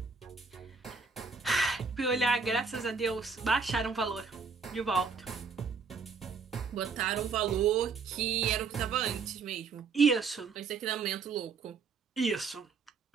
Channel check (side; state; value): left; quieter; 5.1 dB